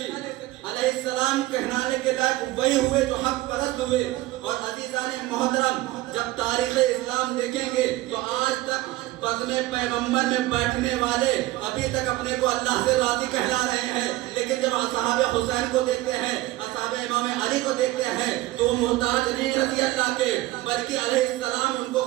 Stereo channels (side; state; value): left; quieter; 17.6 dB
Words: علیہ السلام کہلانے کے لائق وہی ہوئے جو حق پرست ہوئے. اور عزیزان محترم جب تاریخ اسلام دیکھیں گے تو آج تک بزم پیغمبر میں بیٹھنے والے ابھی تک اپنے کو اللہ سے راضی کہلا رہے ہیں، لیکن جب اصحاب حسین کو دیکھتے ہیں، اصحاب امام علی کو دیکھتے ہیں تو وہ محتاج نہیں رضی اللہ کے، بلکہ علیہ السلام ان کو